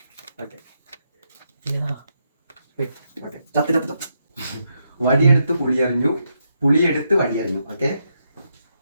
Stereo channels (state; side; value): inverted; both; correlation -0.81